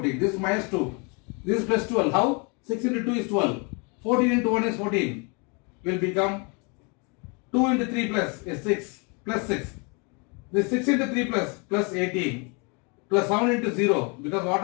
This is minus 2, this is plus 12. How? 6 into 2 is 12. 14 into 1 is 14. Will become 2 into 3 plus is 6. Plus 6. This 6 into 3 plus 18. Plus 7 into 0 because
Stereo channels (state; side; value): quieter; right; 32.7 dB